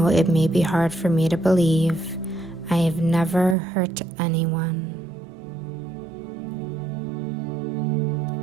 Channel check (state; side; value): drops out; left; at 3.6 s